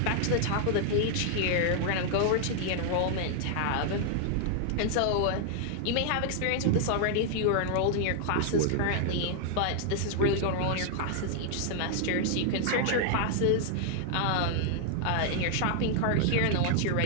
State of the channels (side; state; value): both; different; correlation 0.00